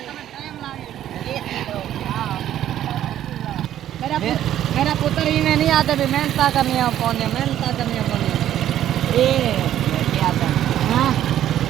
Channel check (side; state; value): left; quieter; 11.7 dB